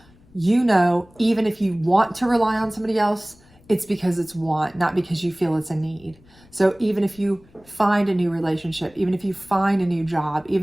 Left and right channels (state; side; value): noise; left; rumble, 28 dB below the sound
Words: You know, even if you want to rely on somebody else, it's because it's want, not because you feel it's a need. So even if you find a new relationship, even if you find a new job,